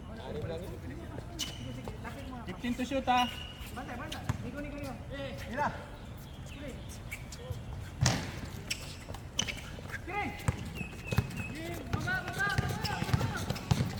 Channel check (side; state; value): both; identical; correlation 1.00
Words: 15 to shoot ha.